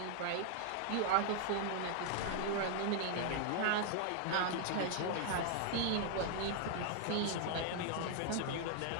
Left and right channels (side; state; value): both; different; correlation 0.00